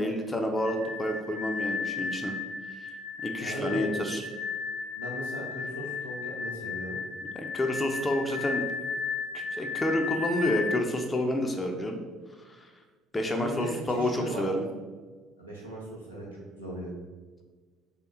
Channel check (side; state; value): both; normal; correlation 0.69